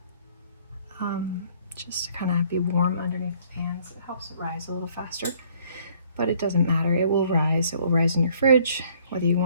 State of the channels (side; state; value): both; inverted; correlation -0.61